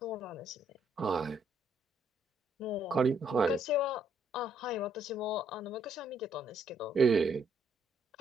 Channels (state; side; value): normal; both; correlation 0.70